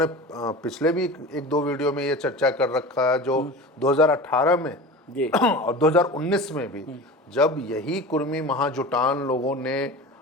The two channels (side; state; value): both; normal; correlation 0.33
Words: पिछले भी एक दो वीडियो में ये चर्चा कर रखा है, जो 2018 में और 2019 में भी जब यही कुर्मी महाजुटान लोगों ने